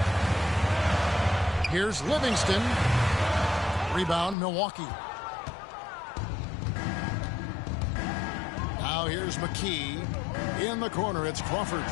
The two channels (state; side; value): drops out; right; at 4.4 s